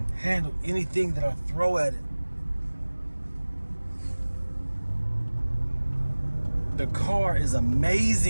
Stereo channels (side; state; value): both; inverted; correlation -1.00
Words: handle anything that I throw at it. The car is